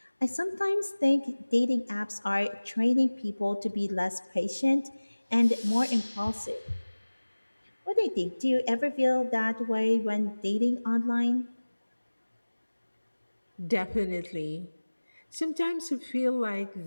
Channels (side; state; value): both; inverted; correlation -1.00